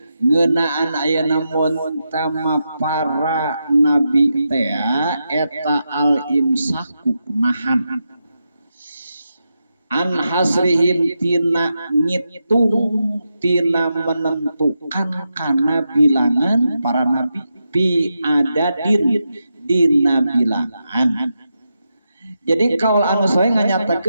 ngeunaan ayeuna mun tama para nabi teh eta al imsaku nahan an hasrihim tina ngitung tina menentukan kana bilangan para nabi bi adadin dina bilangan. Jadi kaul anu sahih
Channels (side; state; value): both; inverted; correlation -0.87